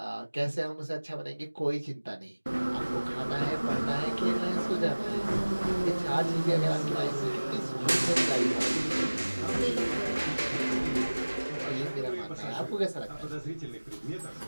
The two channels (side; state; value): both; inverted; correlation -1.00